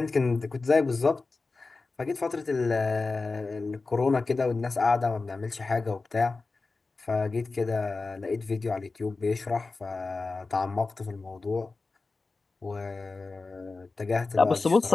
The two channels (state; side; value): quieter; right; 3.8 dB